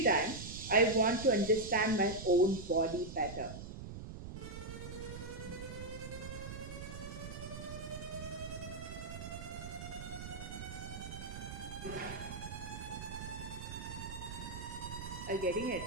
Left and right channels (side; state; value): right; noise; rumble, 9 dB below the sound